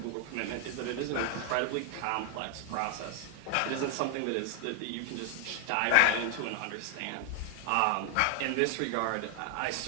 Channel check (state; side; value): different; both; correlation 0.00